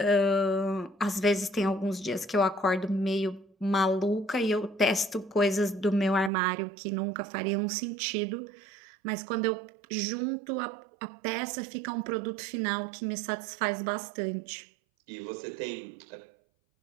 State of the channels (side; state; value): left; drops out; at 6.3 s